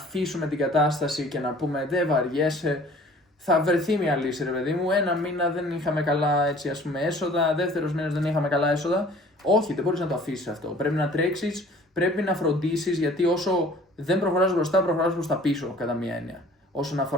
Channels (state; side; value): normal; both; correlation 0.51